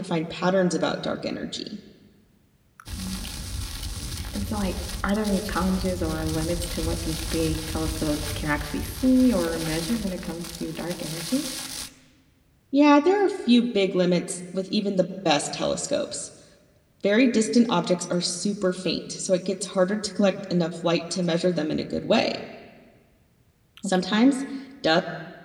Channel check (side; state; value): both; identical; correlation 1.00